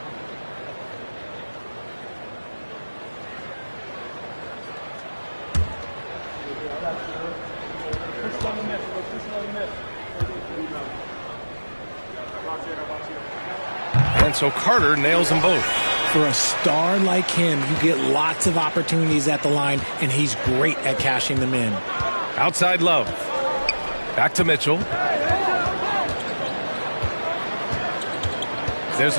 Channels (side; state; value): both; inverted; correlation -1.00